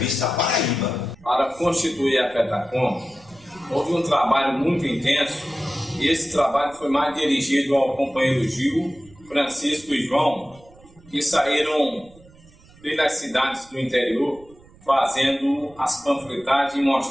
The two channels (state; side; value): noise; right; rumble, 26 dB below the sound